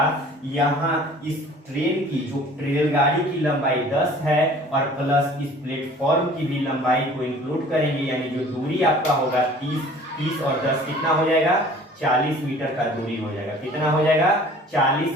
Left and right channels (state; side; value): normal; both; correlation 0.49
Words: यहाँ इस ट्रेन की, जो रेलगाड़ी की लंबाई 10 है और प्लस इस प्लेटफॉर्म की भी लंबाई को इंक्लूड करेंगे, यानी जो दूरी आपका होगा 30 और 10 कितना हो जाएगा, 40 मीटर का दूरी हो जाएगा। कितना हो जाएगा, 40